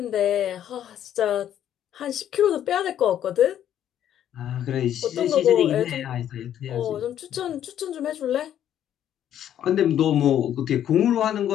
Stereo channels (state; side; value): quieter; right; 10.6 dB